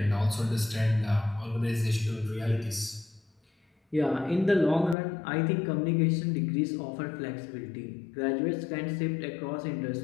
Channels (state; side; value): drops out; right; at 5.0 s